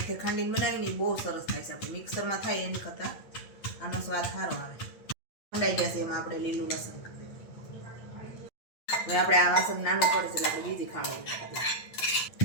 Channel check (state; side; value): late; right; 8.5 ms